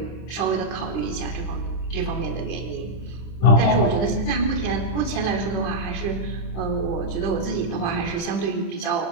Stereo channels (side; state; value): right; late; 26 ms